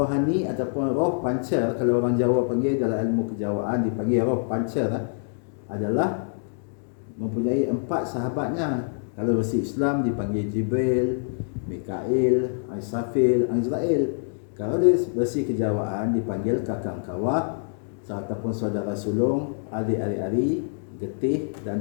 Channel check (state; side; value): silent; right; digital silence